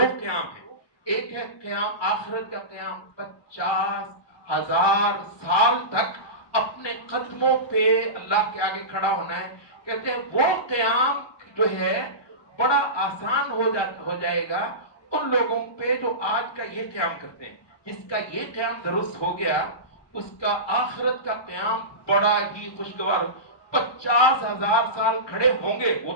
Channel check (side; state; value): right; late; 1.2 ms